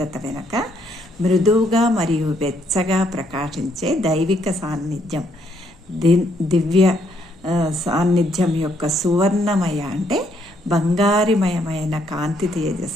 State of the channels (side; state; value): both; normal; correlation 0.71